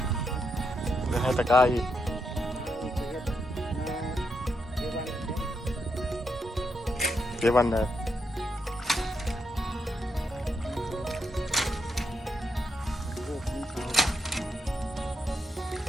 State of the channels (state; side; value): normal; both; correlation 0.81